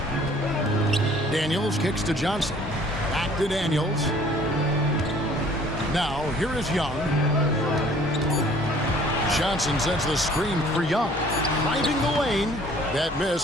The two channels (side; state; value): both; normal; correlation 0.55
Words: Daniels kicks to Johnson. Back to Daniels. Now here is Young. Johnson sends the screen for Young. Driving the lane. That